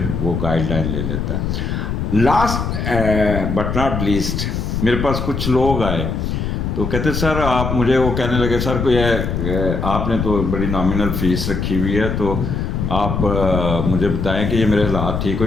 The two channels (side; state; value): left; noise; rumble, 2 dB below the sound